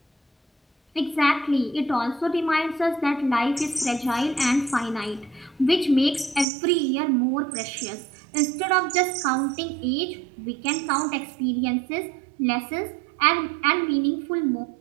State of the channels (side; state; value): left; drops out; at 6.5 s